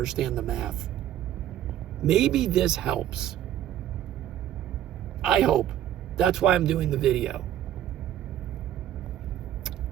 the math. Maybe this helps. I hope. That's why I'm doing the video.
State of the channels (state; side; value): quieter; left; 11.6 dB